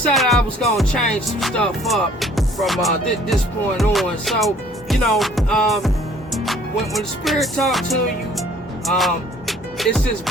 I was gonna change some stuff up from this point on. So, you know, when the Spirit talks to you, it's just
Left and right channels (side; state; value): both; normal; correlation 0.56